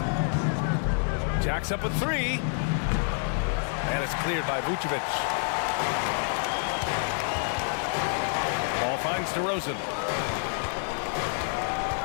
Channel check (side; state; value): right; silent; 59 dB below the other